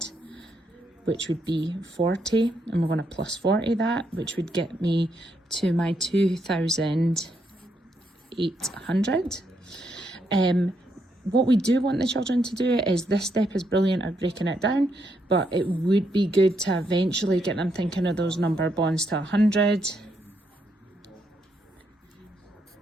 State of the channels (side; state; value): both; normal; correlation 0.78